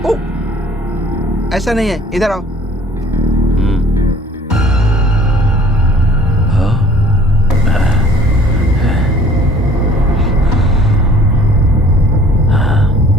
ऐसा नहीं है, इधर आओ।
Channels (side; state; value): both; normal; correlation 0.53